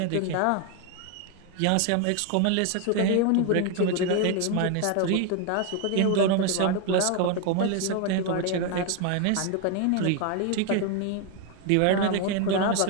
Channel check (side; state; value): both; different; correlation 0.01